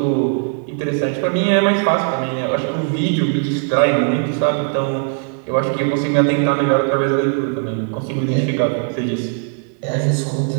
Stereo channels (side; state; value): left; silent; 58 dB below the other